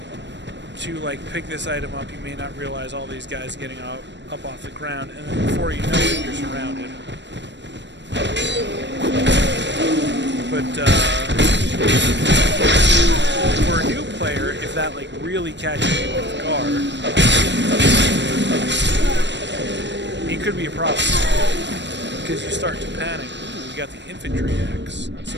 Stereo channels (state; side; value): late; left; 0.52 ms